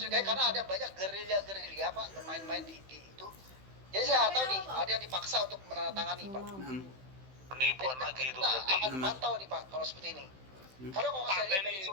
karena ada banyak gerilya-gerilya, Pak, bermain-main di itu. Jadi saya nggak tahu nih, ada yang dipaksa untuk menandatangani, Pak. Penipuan lagi itu Kita berarti. akan pantau nih, Pak, kalau seperti ini. Karena kalau saya lihat dari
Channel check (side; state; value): left; late; 15 ms